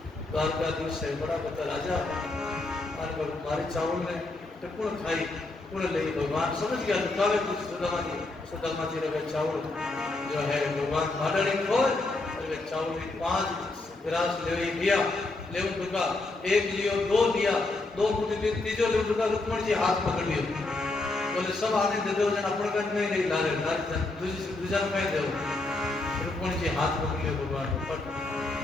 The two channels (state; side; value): quieter; right; 3.1 dB